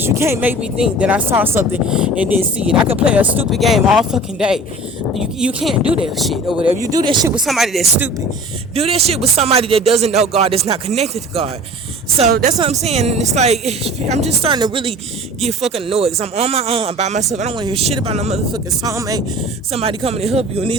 You can't make me think that I saw something and didn't see it. I could play a stupid game all fucking day. You can't do that shit or whatever. You do that shit with somebody that's stupid. Do that shit with somebody that doesn't know God, that's not connected to God. So that's what I'm saying. And it's like, I'm just starting to really get fucking annoyed because I'm on my own, I'm by myself. I don't want to hear shit about no motherfucking soulmate, somebody coming to help you. In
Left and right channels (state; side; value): normal; both; correlation 0.42